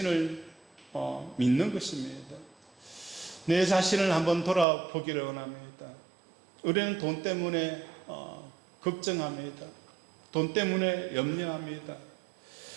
믿는 것입니다. 내 자신을 한번 돌아보기를 원합니다. 우리는 돈 때문에 걱정합니다. 돈 때문에 염려합니다.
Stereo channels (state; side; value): drops out; left; at 4.7 s